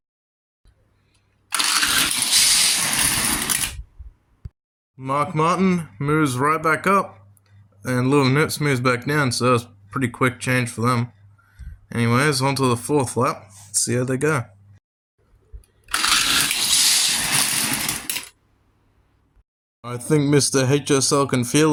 Mark Martin moves right back up and Lewis Nips moves back down, so that's a pretty quick change for them. Anyways, on to the fourth lap. Let's see how they go. I think Mr. HSL can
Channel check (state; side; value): identical; both; correlation 1.00